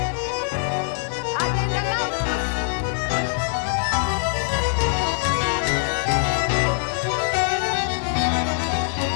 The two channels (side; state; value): right; silent; digital silence